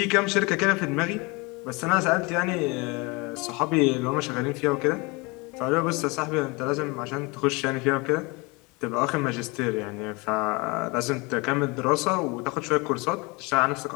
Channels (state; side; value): quieter; right; 27.0 dB